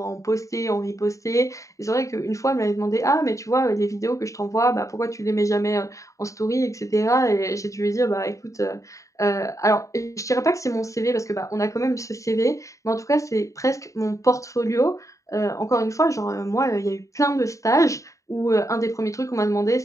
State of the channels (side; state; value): right; late; 0.16 ms